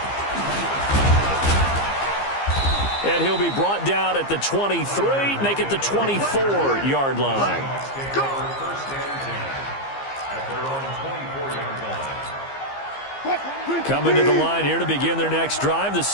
And he'll be brought down at the 23, make it the 24-yard line. Coming to the line here to begin their next drive, the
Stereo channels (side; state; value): right; late; 15 ms